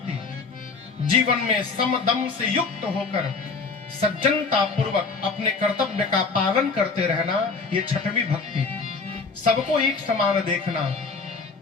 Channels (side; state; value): right; quieter; 4.5 dB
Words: जीवन में समदम से युक्त होकर सज्जनता पूर्वक अपने कर्तव्य का पालन करते रहना, ये छठवीं भक्ति। सबको एक समान देखना,